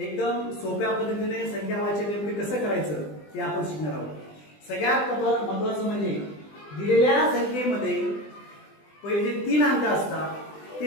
सोप्या पद्धतीने संख्या वाचन नेमके कसं करायचं ते आपण शिकणार आहोत। सगळ्यात महत्त्वाचं म्हणजे दिलेल्या संख्येमध्ये पहिले जे 3 अंक असतात ते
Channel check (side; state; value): right; late; 20 ms